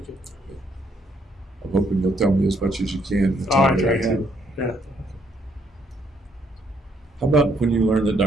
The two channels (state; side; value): normal; both; correlation 0.70